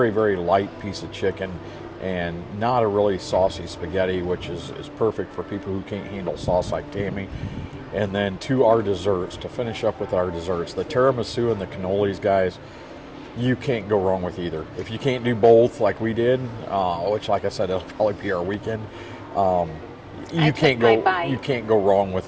light piece of chicken, and not a really saucy spaghetti, which is perfect for people who can't handle sauce like Tammy. And then to our desserts, to finish up with our desserts, the tiramisu and the cannolis, guys, you can't go wrong with either. If you can't do both like we did, which like I said, it'll probably be our weekend, you can't go wrong with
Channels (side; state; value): both; identical; correlation 1.00